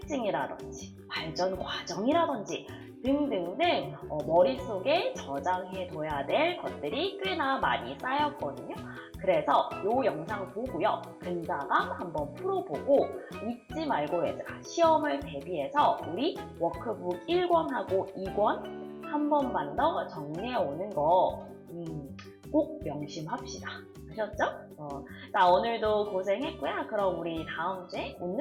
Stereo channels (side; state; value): both; identical; correlation 1.00